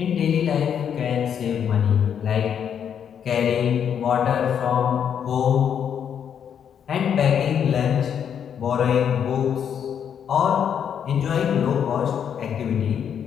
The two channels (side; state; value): right; quieter; 8.3 dB